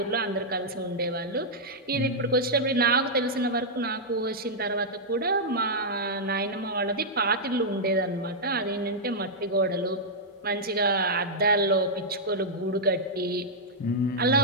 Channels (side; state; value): both; normal; correlation -0.07